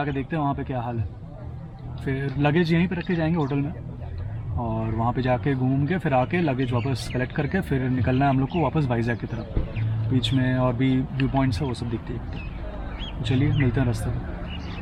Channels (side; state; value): both; identical; correlation 1.00